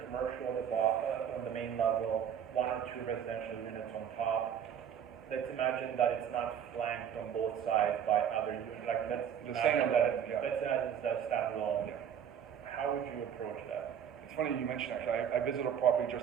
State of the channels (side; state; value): left; quieter; 8.7 dB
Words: commercial on the main level, one or two residential units on top. Let's imagine that it's not flanked on both sides by other units, like let's The imagine same that, yeah. let's imagine it's a standalone. Yeah. How would you approach that? It's funny you mentioned actually. I visited a property